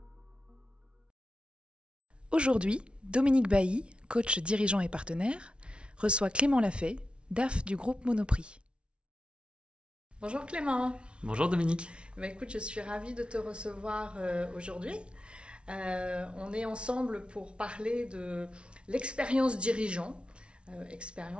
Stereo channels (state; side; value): late; left; 0.058 ms